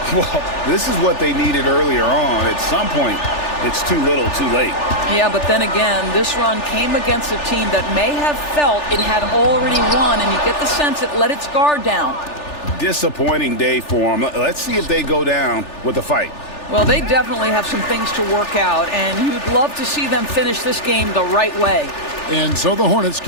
Well, this is what they needed earlier on. At some point, it's too little, too late. Yeah, but then again, this run came against a team that may have felt it had already won, and you get the sense it let its guard down. Disappointing day for them. Let's see if they go down with a fight. Well, they definitely have some things to work out, and you'd love to see them finish this game the right way. And so the Hornets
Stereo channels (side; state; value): right; late; 3.4 ms